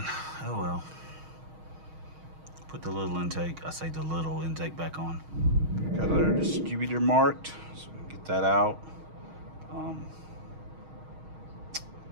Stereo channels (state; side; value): late; left; 6.4 ms